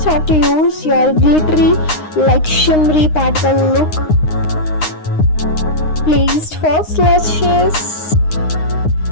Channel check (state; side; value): late; right; 9.7 ms